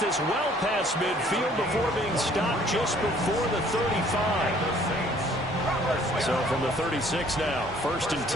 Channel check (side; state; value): both; normal; correlation 0.58